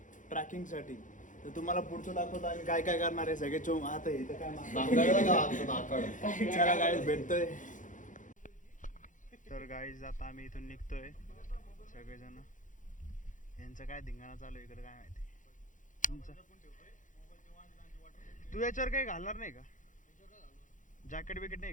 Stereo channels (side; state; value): right; late; 0.37 ms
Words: ट्रॅकिंग साठी. तर तुम्हाला पुढचं दाखवतो आम्ही काय काय करणार आहे. सगळे चोम आता इथं काय चला गाईज भेटतोय. तर गाईज आता आम्ही इथून निघतोय सगळेजण. यांचं काय धिंगाणा चालू इकडे काय माहिती. तुमचं तू याच्यावर काही घालणार नाही का? जॅकेट बिकेट नाही